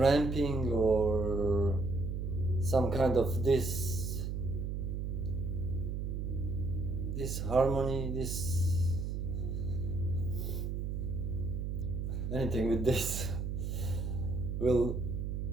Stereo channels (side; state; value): right; noise; hum, 2 dB below the sound